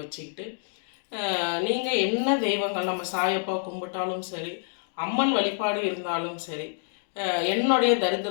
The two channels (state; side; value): silent; right; digital silence